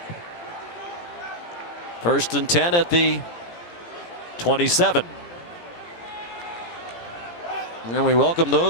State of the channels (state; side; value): late; right; 17 ms